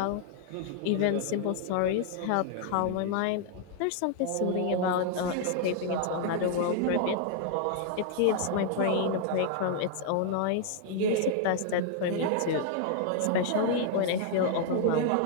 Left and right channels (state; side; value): different; both; correlation -0.01